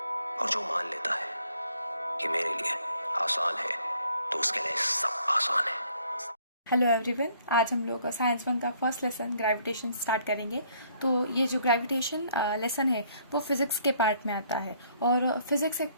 और जो मान लेता है कि मेरे लिए आसान है तो उसके लिए सब आसान है। हेलो एवरीवन, आज हम लोग साइंस वन का फर्स्ट लेसन ग्रेविटेशन स्टार्ट करेंगे। तो ये जो ग्रेविटेशन लेसन है वो फिजिक्स के पार्ट में आता है, और फिजिक्स एक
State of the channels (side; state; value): both; inverted; correlation -0.64